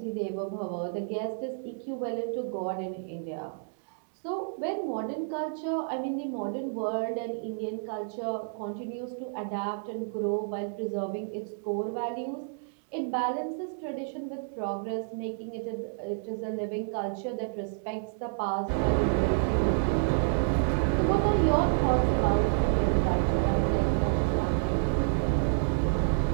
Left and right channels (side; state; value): left; silent; digital silence